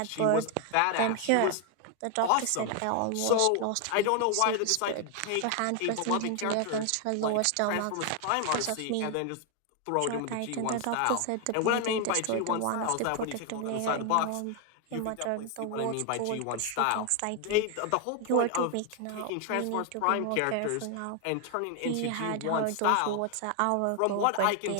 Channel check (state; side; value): different; both; correlation 0.01